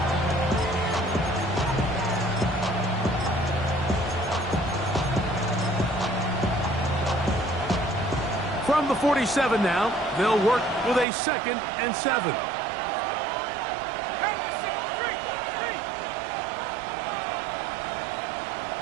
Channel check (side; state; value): left; drops out; at 11.1 s